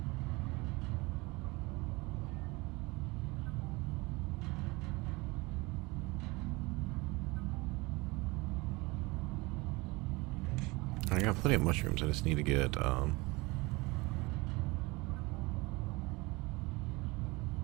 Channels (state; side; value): quieter; left; 24.0 dB